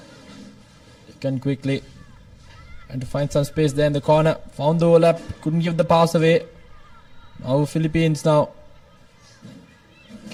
They can quickly and to find some space there in the corner. Found the overlap, couldn't give the pass away. Now Philippines now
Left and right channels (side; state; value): both; identical; correlation 1.00